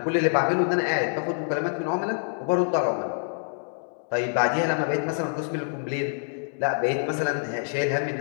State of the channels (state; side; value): silent; right; digital silence